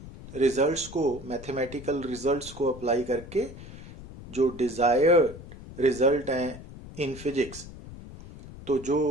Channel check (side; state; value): left; noise; rumble, 15 dB below the sound